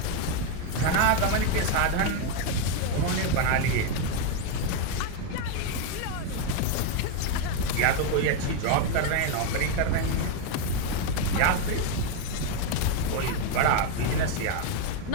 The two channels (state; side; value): different; both; correlation 0.02